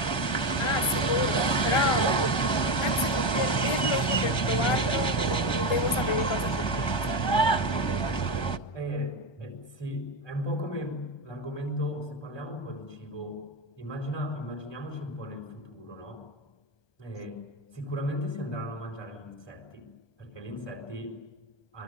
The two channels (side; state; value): right; late; 1.2 ms